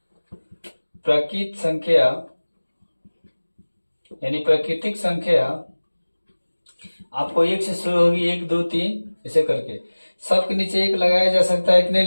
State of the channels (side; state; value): both; inverted; correlation -1.00